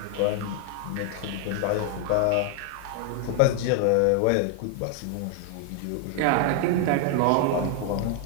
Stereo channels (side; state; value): both; different; correlation 0.00